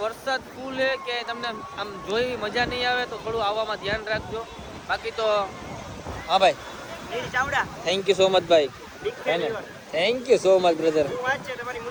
વરસાદ ફૂલ છે કે તમને આમ જોઈ મજા નહીં આવે તો થોડું આવવામાં ધ્યાન રાખજો. બાકી તો હા ભાઈ થેન્ક યુ સો મચ ભાઈ. Thank you so much brother.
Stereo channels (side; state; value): both; identical; correlation 1.00